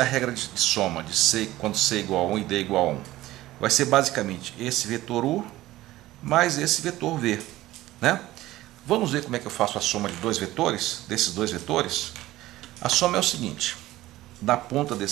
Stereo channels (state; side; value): quieter; left; 16.3 dB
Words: regra de soma de C quando C igual a 1 e D igual a 1? Vai ser basicamente esse vetor U mais esse vetor V, né? Vamos ver como é que eu faço a soma de dois vetores, desses dois vetores. A soma é o seguinte: da ponta